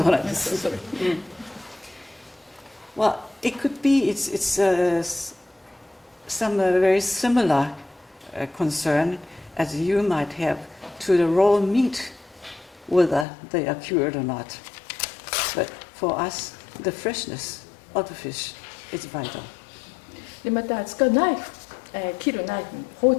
うなんです。それ。Well, it could be it's some very similar concern as you might have to the raw meat, whether they are cured or not. But for us, the freshness of the fish is vital. でまた使うナイフ、切るナイフ、包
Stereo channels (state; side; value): drops out; right; at 13.2 s